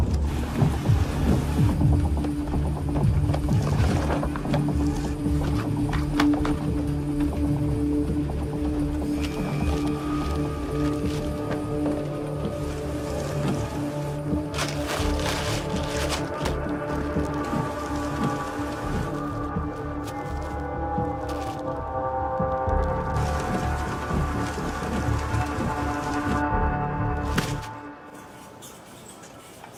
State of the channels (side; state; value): both; identical; correlation 1.00